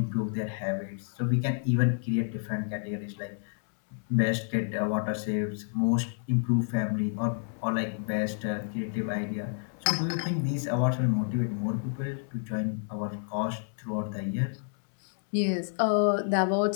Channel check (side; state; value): right; silent; 58 dB below the other